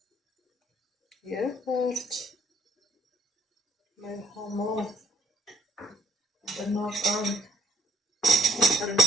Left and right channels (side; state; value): both; normal; correlation 0.62